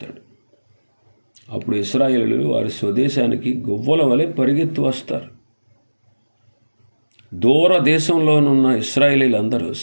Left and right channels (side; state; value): both; inverted; correlation -1.00